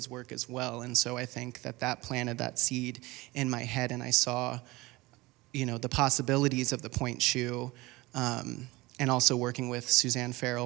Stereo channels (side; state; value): left; quieter; 21.1 dB